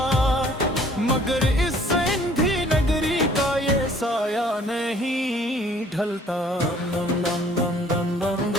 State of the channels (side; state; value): both; normal; correlation 0.57